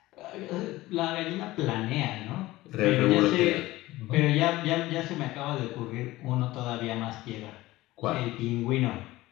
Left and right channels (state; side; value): quieter; right; 18.0 dB